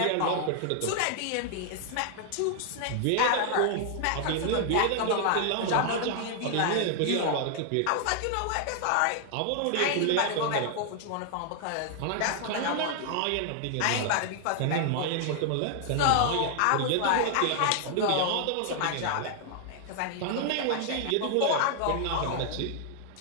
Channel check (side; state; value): both; different; correlation 0.00